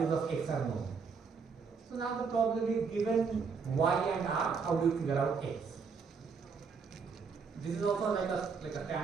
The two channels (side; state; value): left; quieter; 5.4 dB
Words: of X are known. So now the problem is, given Y and R, how do you figure out X? This is also like a